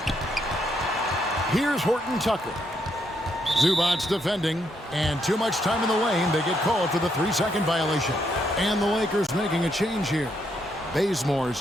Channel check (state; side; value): normal; both; correlation 0.76